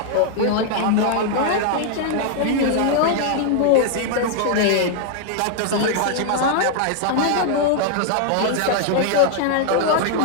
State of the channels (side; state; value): both; different; correlation 0.00